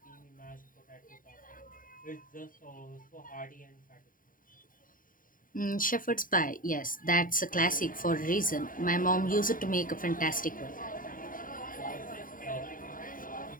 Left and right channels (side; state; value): right; late; 0.40 ms